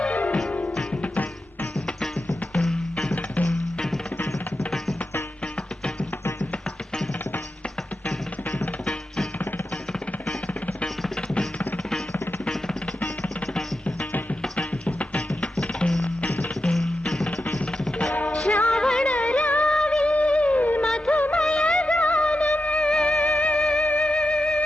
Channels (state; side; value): normal; both; correlation 0.89